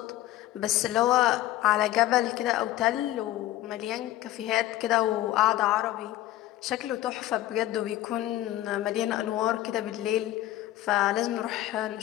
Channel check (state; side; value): quieter; right; 14.8 dB